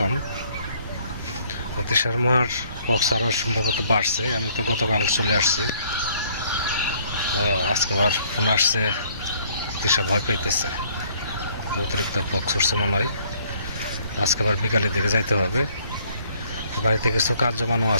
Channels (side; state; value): both; inverted; correlation -0.63